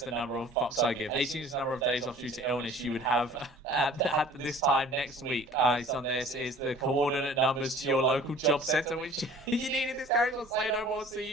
the number of fucks I give. 18 is the number of days off due to illness you would have at this time next week. It's on this is the coordinate numbers to your local job centre, which you needed this character to say no more. See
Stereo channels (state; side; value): normal; both; correlation 0.48